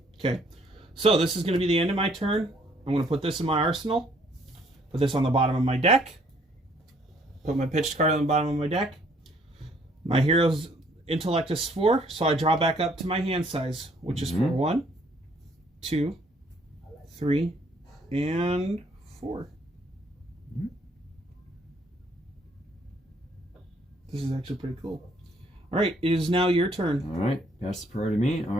Okay, so this is going to be the end of my turn. I'm going to put this in my arsenal. Put this on the bottom of my deck. Put my pitched card on the bottom of my deck. My hero's intellect is 4, so I draw back up to my hand size, which is for 1, 2, 3, and 4. This is actually pretty cool. All right, it is now your turn. All right, pass the priority to me. All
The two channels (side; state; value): both; normal; correlation 0.64